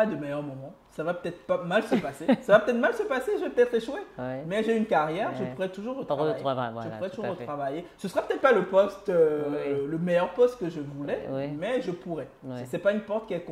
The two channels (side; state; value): both; identical; correlation 1.00